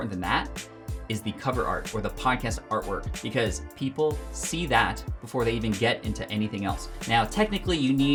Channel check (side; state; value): both; identical; correlation 1.00